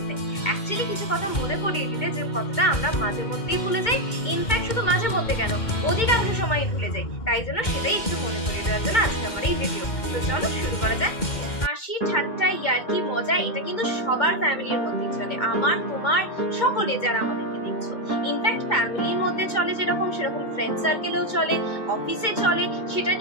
অ্যাকচুয়ালি কিছু কথা মনে করিয়ে দিতে, যে কথাটা আমরা মাঝে মধ্যেই ভুলে যাই। ইনফ্যাক্ট শুধু মাঝে মধ্যে কেন, অধিকাংশ সময় ভুলে যাই। তাই জন্য সেটাই একটু মনে করিয়ে দেওয়ার জন্য আজকে আমার এই ভিডিও। তো চলো শুরু করা যাক। হাসি ঠাট্টা ইয়ার্কি মজা এটা কিন্তু সবার ফ্যামিলির মধ্যেই চলে, আমার তোমার সকলে যারা আমাদেরকে দেখছো। ইনফ্যাক্ট ফ্যামিলির মধ্যে চলে যেরকম, সেরকম ফ্রেন্ড সার্কেলেও চলে, অফিসে চলে। সেটা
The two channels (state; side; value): late; right; 2.1 ms